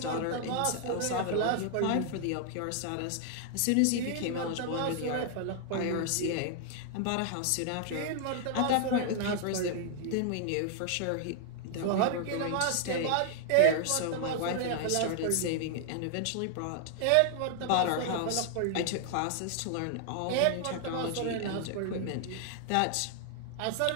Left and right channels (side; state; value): both; different; correlation 0.00